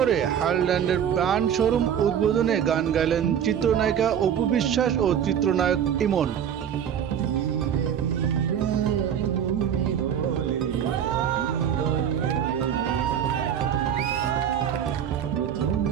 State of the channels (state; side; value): quieter; left; 8.9 dB